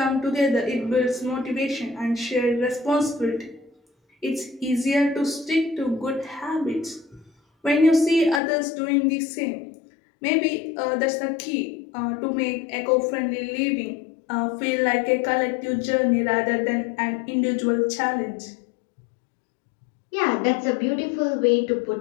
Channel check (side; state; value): right; drops out; at 8.4 s